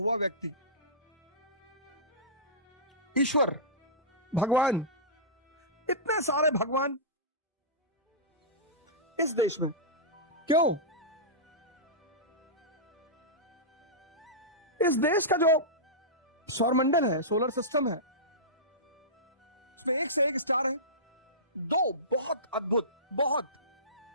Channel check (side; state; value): both; normal; correlation -0.19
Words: व्यक्ति, ईश्वर, भगवान। इतने सारे भगवान इस देश में क्यों? इस देश का जो सौरमंडल है, सोलर सिस्टम है, उसमें एक से एक स्टार है। दो बहुत अद्भुत, बहुत,